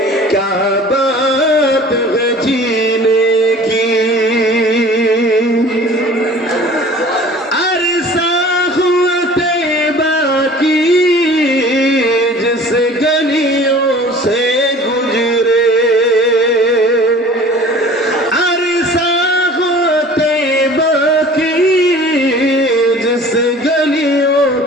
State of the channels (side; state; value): both; normal; correlation 0.46